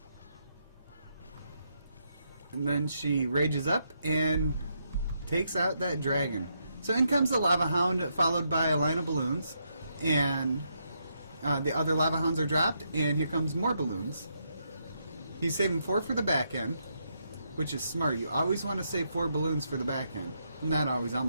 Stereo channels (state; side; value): inverted; both; correlation -0.79